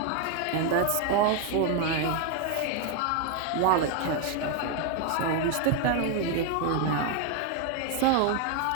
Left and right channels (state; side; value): different; both; correlation 0.01